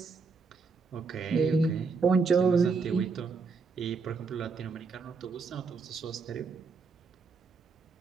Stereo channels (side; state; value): left; quieter; 4.6 dB